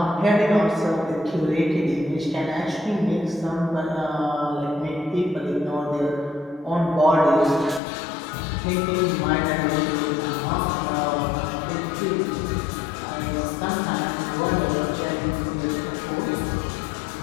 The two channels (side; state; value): right; drops out; at 7.8 s